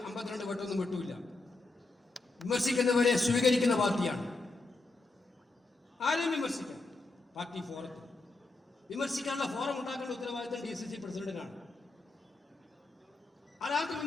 52 വട്ടമൊന്നും വിട്ടൂല. വിമർശിക്കുന്നവരെ സ്വീകരിക്കുന്ന പാർട്ടിയാണ്. ആരെയും വിമർശിക്കാം. പാർട്ടി ഫോറത്തിൽ വിമർശിക്കാനുള്ള ഫോറം ഉണ്ടാക്കേണ്ട ഉത്തരവാദിത്തം DCC പ്രസിഡന്റിനാണ്. ആരാർക്കും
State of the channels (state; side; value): quieter; right; 3.3 dB